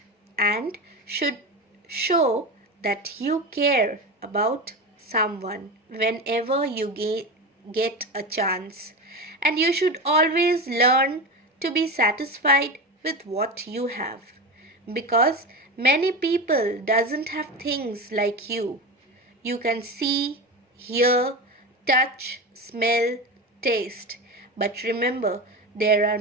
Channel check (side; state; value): both; normal; correlation 0.23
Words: and should show that you care about someone whenever you get a chance. And you should always learn to be satisfied with what you have, because many people doesn't have things like you. You can see, hear, touch, smell, taste. But remember, there are